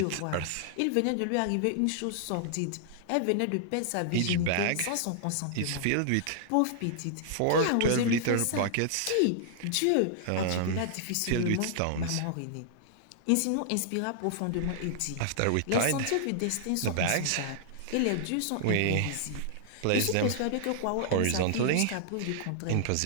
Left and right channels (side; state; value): both; different; correlation -0.01